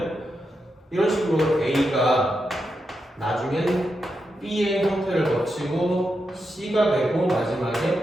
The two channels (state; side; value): normal; both; correlation 0.86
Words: 이런 식으로 A가 나중엔 B의 형태를 거치고 C가 되고 마지막에